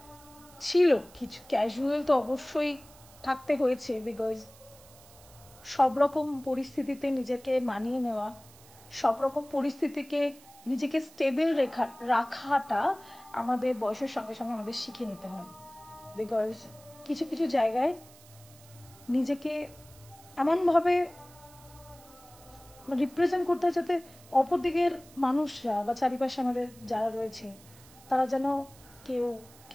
ছিল কিছু ক্যাজুয়াল তো অবশ্যই থাকতে হয়েছে, বিকজ সব রকম পরিস্থিতিতে নিজেকে মানিয়ে নেওয়া, সব রকম পরিস্থিতিকে নিজেকে স্টেবল রাখাটা আমাদের বয়সের সঙ্গে সঙ্গে আমাদের শিখে নিতে হয়। বিকজ কিছু কিছু জায়গায় নিজেকে এমনভাবে রিপ্রেজেন্ট করতে হয় যাতে অপর দিকের মানুষরা বা চারিপাশে আমাদের যারা রয়েছে তারা যেন কেউ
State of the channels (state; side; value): noise; right; hiss, 23 dB below the sound